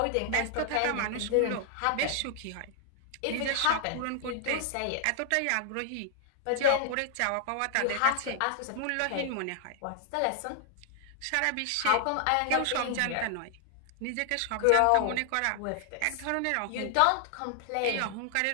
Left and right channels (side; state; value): both; different; correlation 0.00